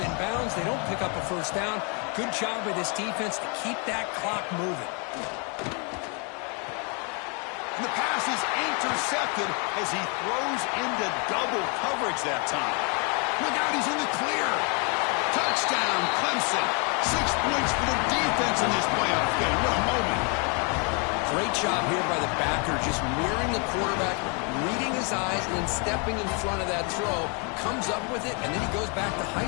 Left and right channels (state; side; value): quieter; right; 35.2 dB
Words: bounds. They don't pick up a first down. Good job by this defense to keep that clock moving. And the pass is intercepted as he throws into double coverage that time. Look out, he's in the clear. Touchdown, Clemson. 6 points for the defense in this playoff game. What a moment. Great job here by the backer, just mirroring the quarterback, reading his eyes, and then stepping in front of that throw, comes up with it, and then he goes back to